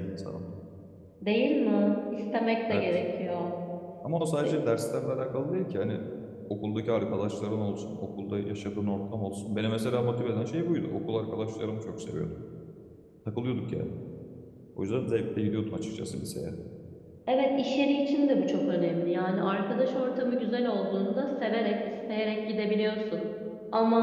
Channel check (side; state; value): both; identical; correlation 1.00